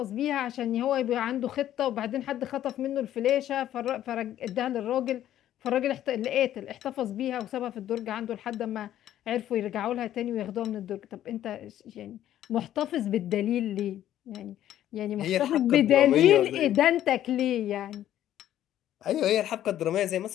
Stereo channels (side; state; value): right; quieter; 12.0 dB